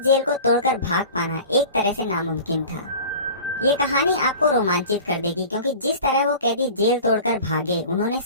जेल को तोड़कर भाग पाना एक तरह से नामुमकिन था। ये कहानी आपको रोमांचित कर देगी क्योंकि जिस तरह वो कैदी जेल तोड़कर भागे, उन्होंने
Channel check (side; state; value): both; inverted; correlation -0.39